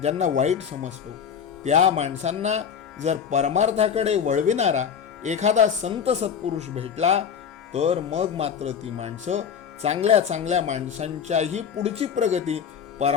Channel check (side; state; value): right; quieter; 7.5 dB